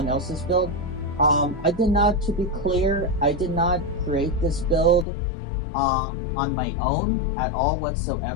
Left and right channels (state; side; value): drops out; right; at 5.1 s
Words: else's build. I did not, to be clear, I did not create this build on my own at all